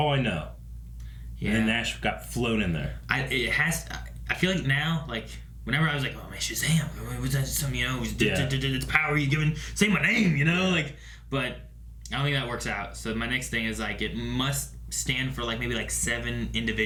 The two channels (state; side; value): identical; both; correlation 1.00